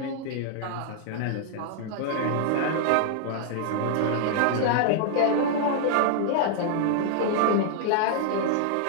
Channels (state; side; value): different; both; correlation -0.01